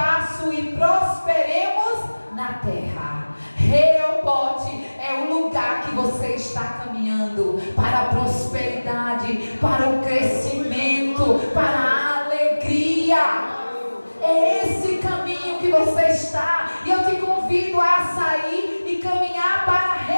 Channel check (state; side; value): inverted; both; correlation -1.00